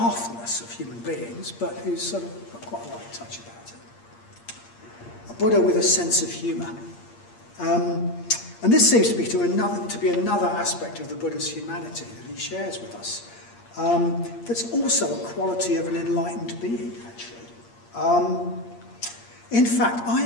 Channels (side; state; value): right; late; 8.6 ms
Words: of human beings, but who's sort of got quite a light touch about it. A Buddha with a sense of humour. And this seems to be another aspect of the Buddha's humanity that he shares with us. That's also a quality of an enlightened being, actually. In fact,